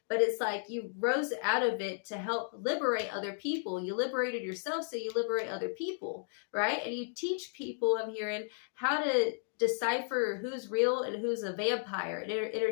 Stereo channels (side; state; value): right; silent; 55 dB below the other